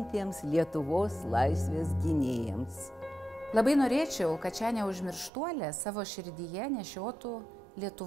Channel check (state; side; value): drops out; left; at 5.3 s